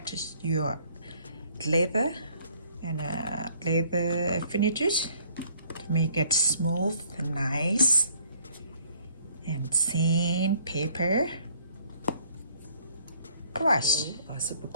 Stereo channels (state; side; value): inverted; both; correlation -0.61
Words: your leather and leather finishes to make it smooth and nice. And sandpaper, brush or super